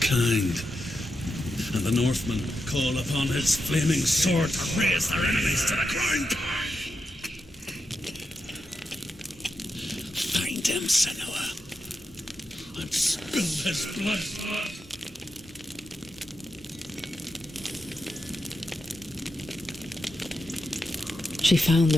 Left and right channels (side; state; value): both; normal; correlation 0.87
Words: and the Northmen call upon his flaming sword to raise their enemies to the ground. Find him, Senua, and spill his blood. She found